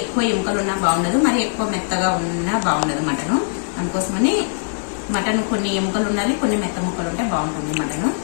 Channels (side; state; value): right; silent; digital silence